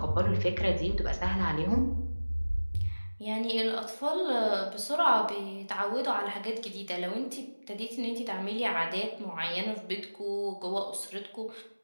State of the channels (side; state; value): both; inverted; correlation -1.00